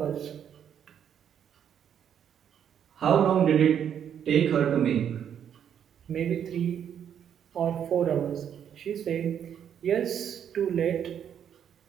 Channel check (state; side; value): quieter; left; 8.8 dB